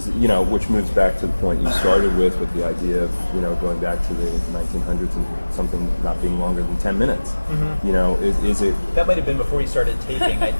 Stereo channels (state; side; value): inverted; both; correlation -1.00